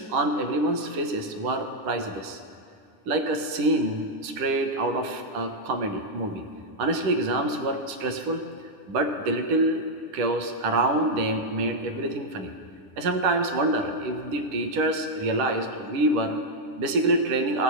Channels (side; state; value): left; late; 10 ms